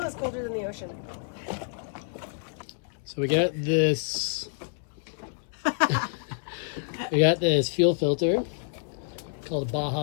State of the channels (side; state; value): right; silent; 59 dB below the other